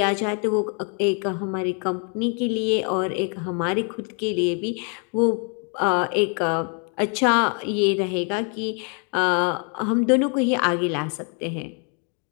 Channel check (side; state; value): right; quieter; 39.0 dB